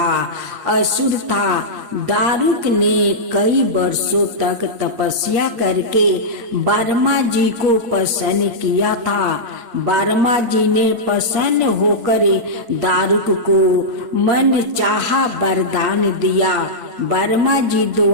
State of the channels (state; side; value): late; left; 8.4 ms